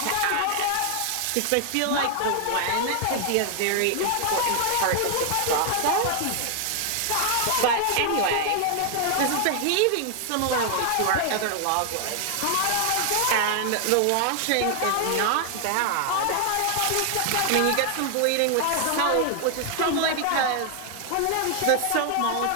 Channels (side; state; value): both; different; correlation 0.00